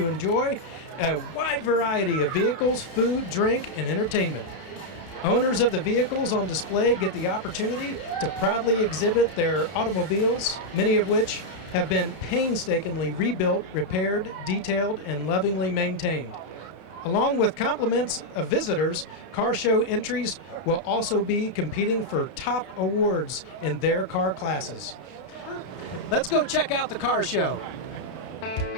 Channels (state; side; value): late; right; 32 ms